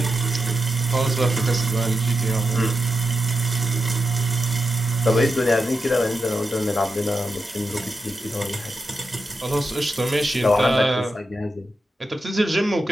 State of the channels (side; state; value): both; normal; correlation 0.87